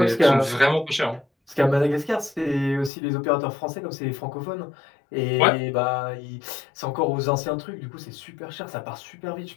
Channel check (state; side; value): drops out; right; at 2.9 s